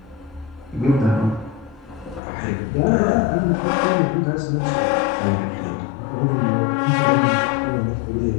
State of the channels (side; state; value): right; drops out; at 2.2 s